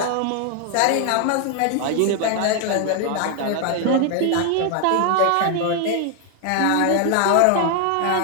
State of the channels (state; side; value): different; both; correlation 0.00